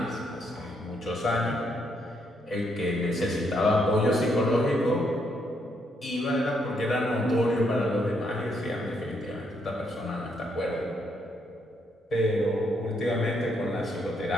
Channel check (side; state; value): both; normal; correlation 0.75